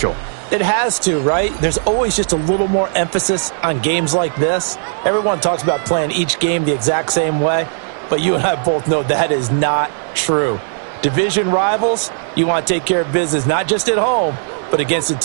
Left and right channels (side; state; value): left; silent; digital silence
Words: It has to, right? There's always just a little more emphasis on games like this. Everyone talks about playing each game the exact same way, but you and I both know that is not true. Division rivals, you want to take care of business not just at home, but against a